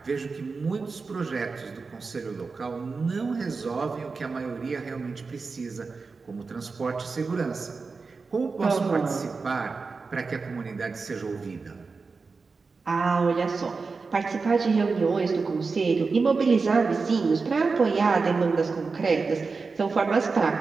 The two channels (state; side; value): quieter; left; 4.4 dB